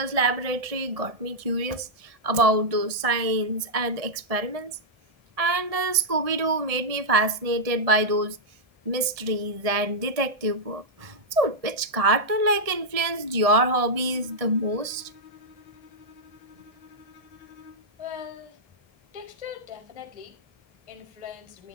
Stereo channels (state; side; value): late; left; 1.6 ms